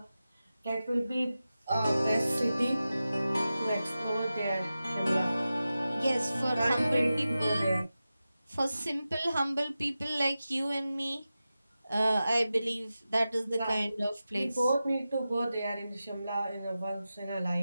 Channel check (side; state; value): both; inverted; correlation -0.93